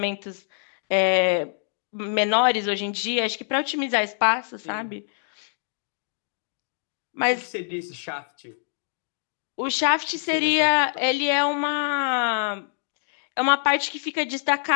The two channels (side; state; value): right; silent; digital silence